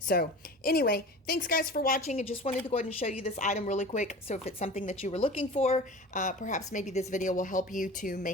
anyway, thanks guys for watching. I just wanted to go ahead and show you this item really quick. So if it's something that you were looking for, perhaps maybe this video will help you to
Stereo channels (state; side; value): normal; both; correlation 0.37